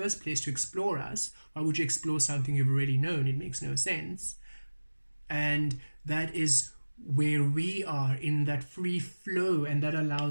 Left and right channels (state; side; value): inverted; both; correlation -1.00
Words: place, to explore us. Why would you explore something you've already known? It makes no sense. And that is where we are, in that free flow, and that